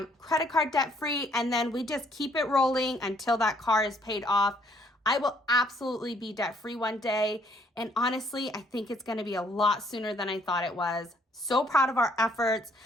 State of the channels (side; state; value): both; normal; correlation 0.65